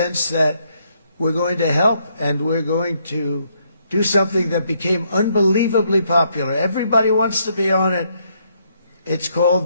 that we're going to help and we're going to do something that became unbelievably popular. Everybody wants to be on it. It's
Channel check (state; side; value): inverted; both; correlation -0.73